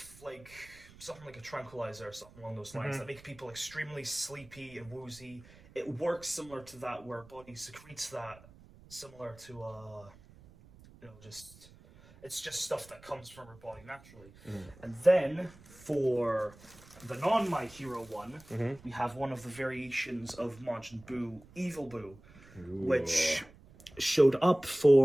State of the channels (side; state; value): right; noise; rumble, 22 dB below the sound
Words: like something like a tranquilizer or something along those lines that make people extremely sleepy and woozy. It works similar to that, where body secretes that, similar to just, it's just stuff that comes from her body naturally. And then for the non My Hero one, we have one of the variations of Majin Buu, Evil Buu, which showed up